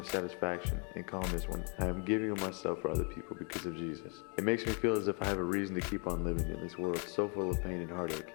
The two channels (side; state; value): right; quieter; 36.9 dB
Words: satisfaction and calmness when I am giving of myself for other people because of Jesus. It makes me feel as if I have a reason to keep on living in this world so full of pain and heartache,